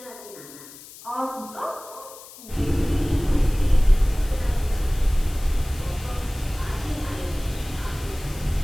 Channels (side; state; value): left; noise; hiss, 18 dB below the sound